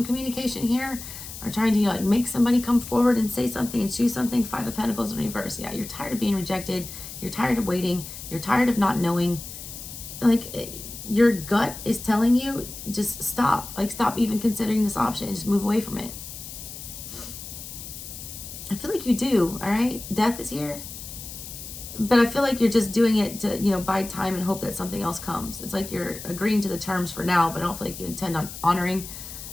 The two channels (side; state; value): left; noise; hiss, 11 dB below the sound